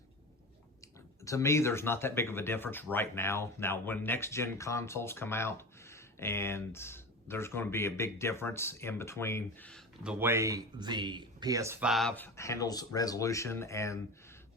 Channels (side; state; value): both; normal; correlation 0.28